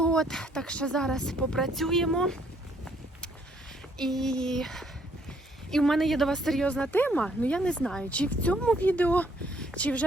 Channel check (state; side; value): normal; both; correlation 0.67